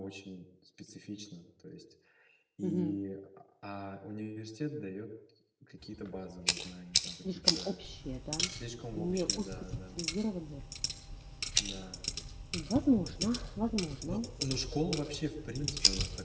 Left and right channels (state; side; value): identical; both; correlation 1.00